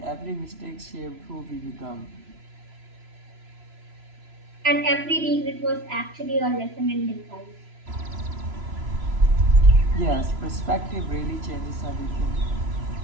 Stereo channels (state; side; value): late; left; 3.0 ms